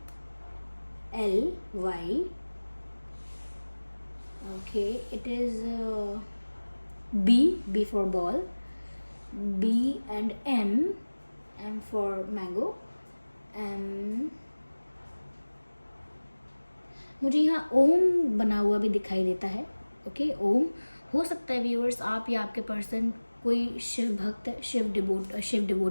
okay, it is B for ball, B and M for mango, मुझे यहाँ ओम बना हुआ भी दिखाई देता है। ओके, ओम। हो सकता है व्यूअर्स आप या आपके पर्सन कोई शिव भक्त, शिव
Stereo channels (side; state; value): both; inverted; correlation -1.00